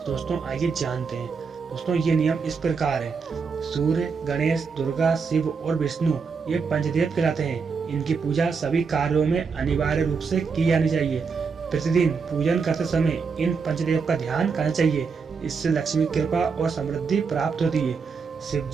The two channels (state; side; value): quieter; left; 5.3 dB